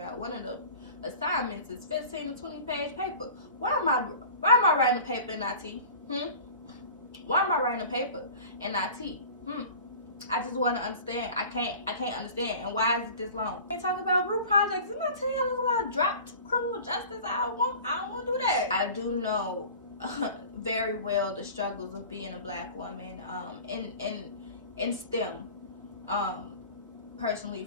one of the assignments is 15 to 20-page paper. Why am I writing a paper in IT? Why am I writing a paper in IT? I just want to understand. I can't understand. And why is it this long? They talk about group projects. Didn't I tell y'all about dropped criminal justice? I don't want to do that. I do know very well the struggles of being a Black woman in STEM. personally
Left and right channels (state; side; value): inverted; both; correlation -0.41